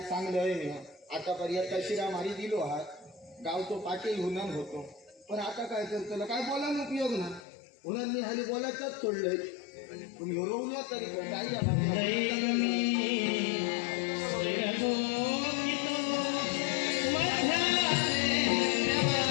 चांगलं आहे मी आतापर्यंत शिरा मारी दिलो आहात गावतो पाटील हुनन होतो पण आता काय करतो काय बोलायला उपयोग ना म्हणून मी हाली बोलायचंच सोडलंय तुम्ही हरवलो तरी पण काही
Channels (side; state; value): right; drops out; at 7.5 s